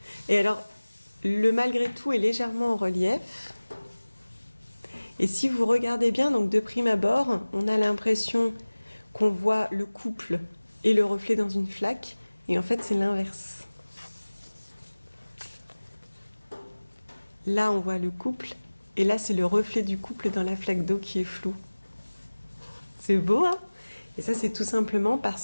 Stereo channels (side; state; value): both; inverted; correlation -1.00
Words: Et alors, le malgré tout est légèrement en relief. Et si vous regardez bien, donc de prime abord, on a l'impression qu'on voit le couple et le reflet dans une flaque, et en fait c'est l'inverse. Là, on voit le couple, et là, c'est le reflet du couple dans la flaque d'eau qui est floue. C'est beau, hein? Et ça, c'est tout simplement